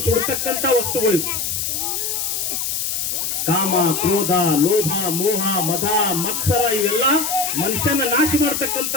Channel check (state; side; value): noise; left; hiss, 1 dB below the sound